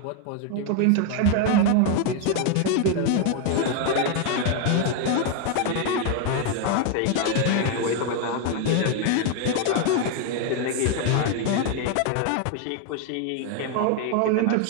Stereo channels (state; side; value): different; both; correlation 0.01